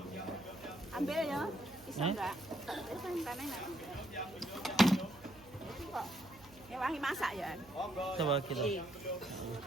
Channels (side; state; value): right; noise; hum, 22 dB below the sound